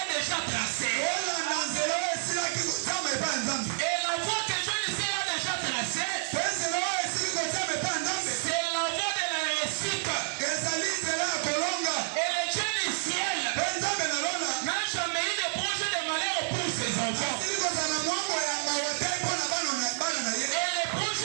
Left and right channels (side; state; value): left; silent; 58 dB below the other